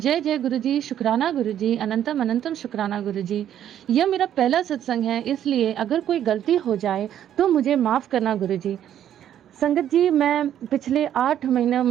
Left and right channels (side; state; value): left; quieter; 10.6 dB